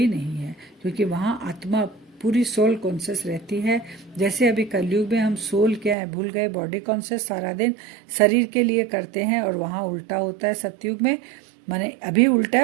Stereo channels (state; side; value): drops out; left; at 6.0 s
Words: नहीं है, क्योंकि वहाँ आत्मा पूरी सोल कॉन्शियस रहती है। जैसे अभी कलयुग में हम सोल क्या है भूल गए, बॉडी कॉन्शियस सारा दिन शरीर के लिए करते हैं, और वहाँ उल्टा होता है सतयुग में, माने अभी उल्टा